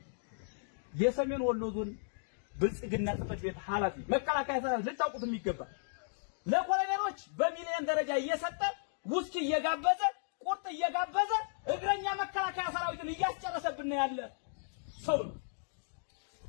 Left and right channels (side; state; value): right; silent; digital silence